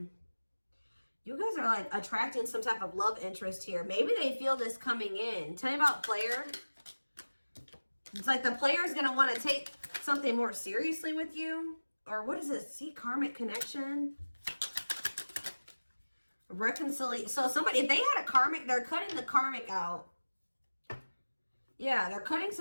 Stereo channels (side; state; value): both; inverted; correlation -1.00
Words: you guys are like attracting some type of love interest here. Maybe they feel this coming in. Tell me about player. It's like the player is going to want to take something more seriously with you. Or what is this? See, karmic connection. Reconciliation. So somebody, if they had a karmic, they're cutting the karmic out. Yeah, they're cutting